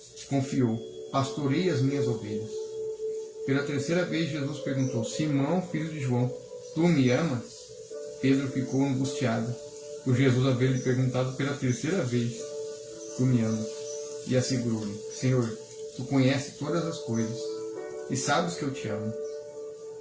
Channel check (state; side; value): identical; both; correlation 1.00